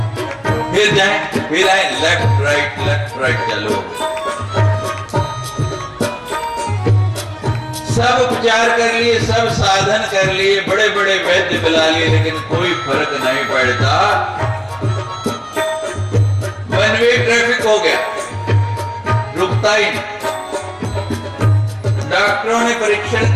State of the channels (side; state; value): both; identical; correlation 1.00